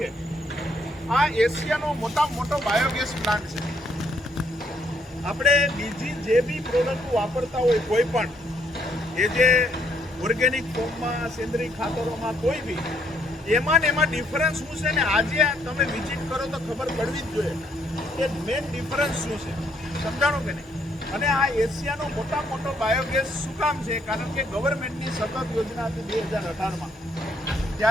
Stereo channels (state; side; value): normal; both; correlation 0.70